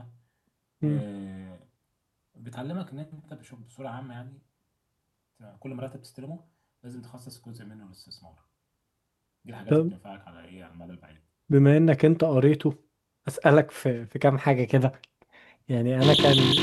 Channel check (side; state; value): both; identical; correlation 1.00